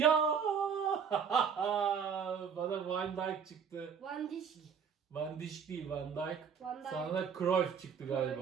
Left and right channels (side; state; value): left; quieter; 6.9 dB